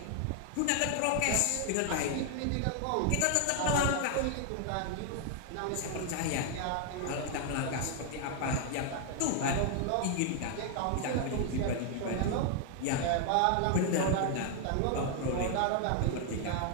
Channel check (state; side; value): different; both; correlation 0.00